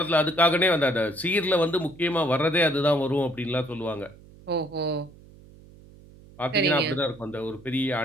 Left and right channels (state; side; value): noise; right; hum, 22 dB below the sound